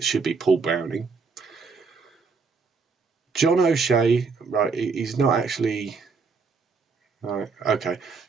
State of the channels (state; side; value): quieter; left; 4.8 dB